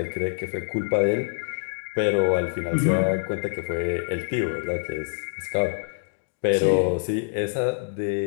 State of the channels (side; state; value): right; silent; digital silence